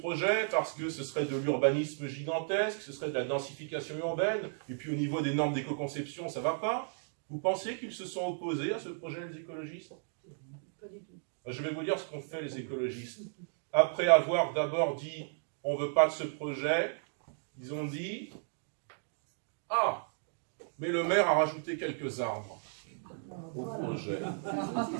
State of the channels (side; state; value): left; silent; digital silence